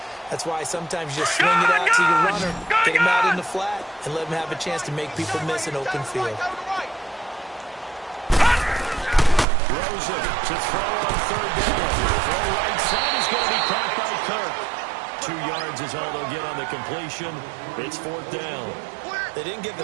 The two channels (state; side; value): drops out; left; at 9.5 s